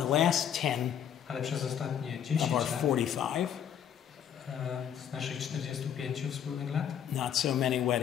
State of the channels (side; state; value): right; quieter; 9.1 dB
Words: last 10 Ale przez ostatnie 10 of our lat 45, z naszych 45 wspólnych lat not so many